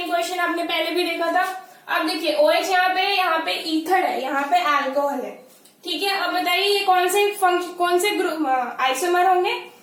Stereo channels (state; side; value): identical; both; correlation 1.00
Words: क्वेश्चन आपने पहले भी देखा था। अब देखिए OH यहाँ पे ईथर है, यहाँ पे अल्कोहल है। ठीक है, अब बताइए ये कौन से ग्रुप आइसोमर होंगे,